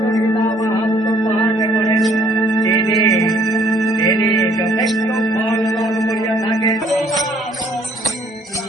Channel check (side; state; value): both; normal; correlation 0.62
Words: গীতা মাহাত্ম পাঠ করেন তিনি যথেষ্ট ফল লাভ করিয়া থাকেন।